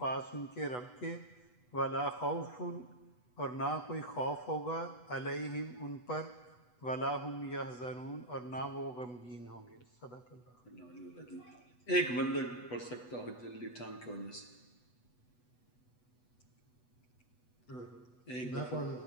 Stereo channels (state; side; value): late; right; 8.1 ms